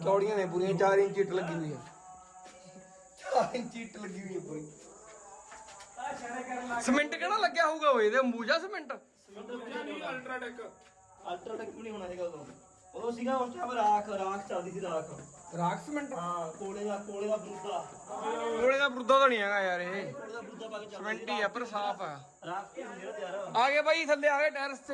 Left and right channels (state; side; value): identical; both; correlation 1.00